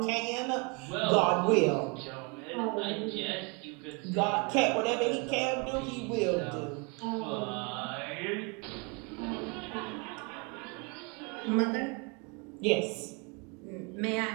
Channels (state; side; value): quieter; left; 32.2 dB